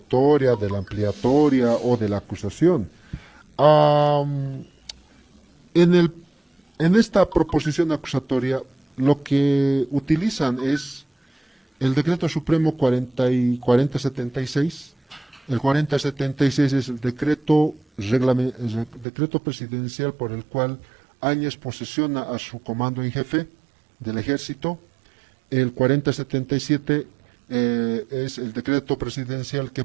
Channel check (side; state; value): left; drops out; at 19.1 s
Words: de la ampliatoria o de la acusación. En esta proposición acusatoria lo que utilizan es el Decreto Supremo 4076. El 4076 es el decreto presidencial por el cual Áñez posesiona a su comando en jefe del ejército. El 4077 es el decreto presidencial que